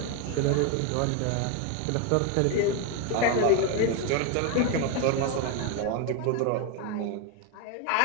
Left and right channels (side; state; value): both; different; correlation 0.01